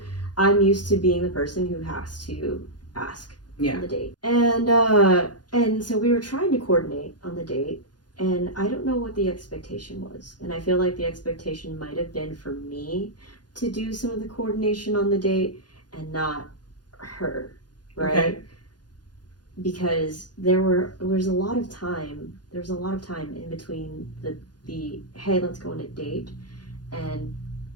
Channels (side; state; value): right; late; 0.69 ms